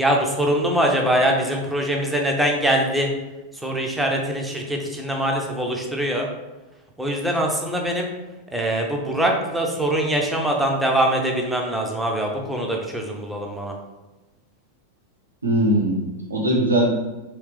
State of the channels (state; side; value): normal; both; correlation 0.36